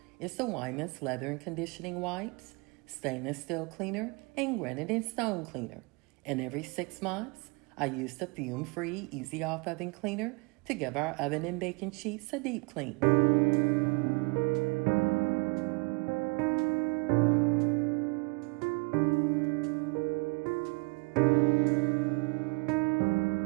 is the Wyman's Leather and Conditioning Wipes, Stainless Steel Cleaner, and Granite and Stone Cleaner. And every 6 months, I use the fume-free Easy Off Oven Cleaner to give our oven and baking sheets a deep clean.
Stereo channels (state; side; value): quieter; left; 29.9 dB